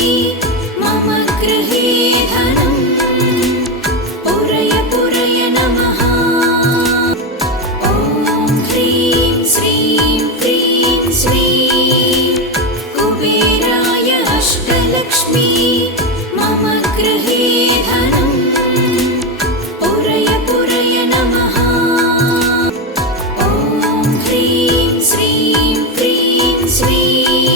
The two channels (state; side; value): normal; both; correlation 0.12